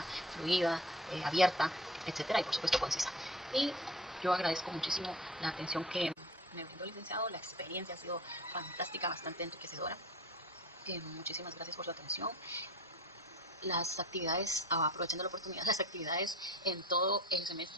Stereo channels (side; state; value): both; normal; correlation 0.42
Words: fluida, abierta, etcétera, y por supuesto concisa. Y yo agradezco muchísimo la atención que me brindó el licenciado. La experiencia ha sido fantástica, bastante enriquecedora. Muchísimas gracias por su atención. Las actividades, aprovechando la oportunidad, las actividades en todo el